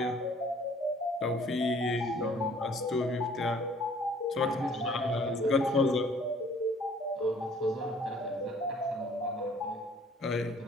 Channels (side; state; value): both; normal; correlation 0.56